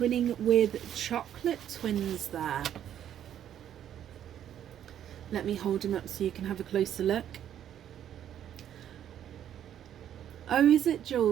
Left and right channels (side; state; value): left; quieter; 10.3 dB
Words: with chocolate twins there. Let me hold them up so you can have a closer look. Oh, is it,